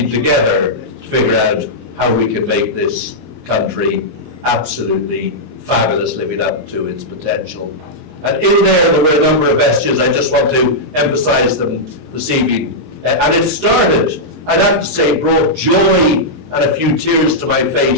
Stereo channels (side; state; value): left; late; 22 ms